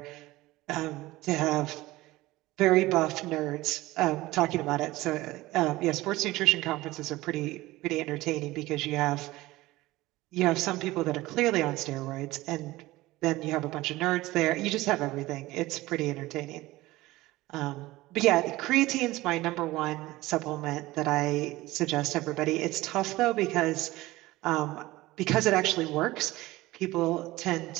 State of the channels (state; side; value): quieter; left; 18.5 dB